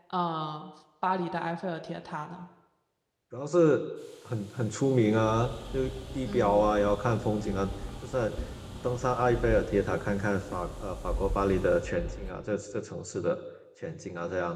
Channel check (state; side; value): identical; both; correlation 1.00